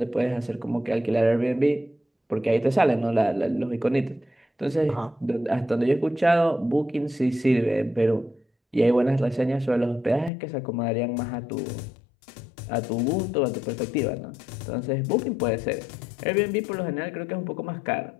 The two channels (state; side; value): drops out; right; at 10.3 s